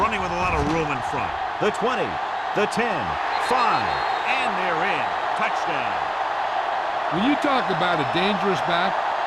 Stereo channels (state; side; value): identical; both; correlation 1.00